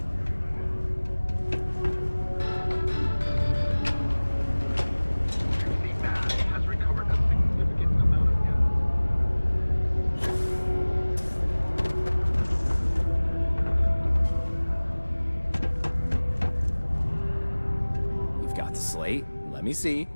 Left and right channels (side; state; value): both; inverted; correlation -1.00